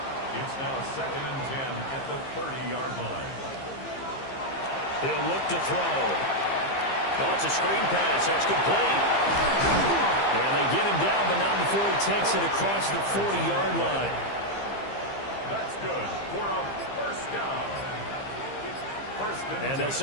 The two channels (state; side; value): late; right; 15 ms